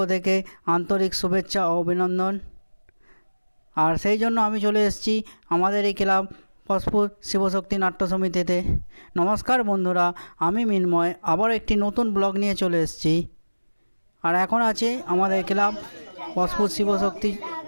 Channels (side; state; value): both; inverted; correlation -1.00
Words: থেকে আন্তরিক শুভেচ্ছা ও অভিনন্দন। আর সেই জন্য আমি চলে এসেছি আমাদের এই ক্লাব পশপুর শিবশক্তি নাট্য সমিতিতে। নমস্কার বন্ধুরা, আমি মিন্ময় আবার একটি নতুন ব্লগ নিয়ে চলে এসেছি। আর এখন আছে আমাদের ক্লাব পশপুর শিবশক্তি